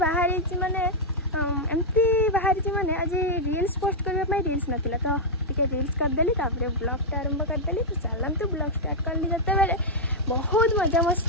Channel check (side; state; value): both; normal; correlation -0.05